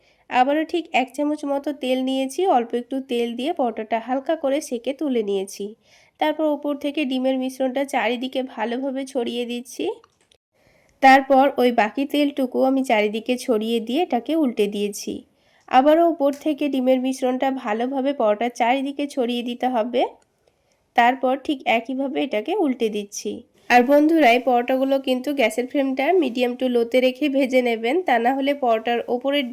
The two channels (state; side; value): identical; both; correlation 1.00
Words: আবারও ঠিক 1 চামচ মতো তেল নিয়েছি, অল্প একটু তেল দিয়ে পরোটাটা হালকা করে সেঁকে তুলে নিয়েছি। তারপর ওপর থেকে ডিমের মিশ্রণটা চারিদিকে ভালোভাবে ছড়িয়ে দিচ্ছি। তারপর ওই বাকি তেলটুকু আমি চারিদিকে ছড়িয়ে দিয়ে এটাকে উল্টে দিয়েছি। আবারও ওপর থেকে ডিমের মিশ্রণটা ভালোভাবে পরোটার চারিদিকে ছড়িয়ে দিতে হবে। তারপর ঠিক একইভাবে এটাকে উল্টে দিচ্ছি। আর বন্ধুরা এই পরোটাগুলো কিন্তু গ্যাসের ফ্লেমটা মিডিয়াম টু লোতে রেখে ভেজে নেবেন, তা না হলে পরোটার ওপরের